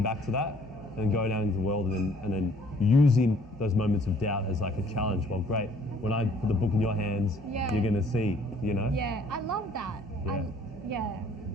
back to that and going out into the world and then using those moments of doubt as like a challenge. Well, great. When I put the book in your hands, you're going to see, you know? Yeah, I love that. Yes,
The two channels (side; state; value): both; normal; correlation 0.59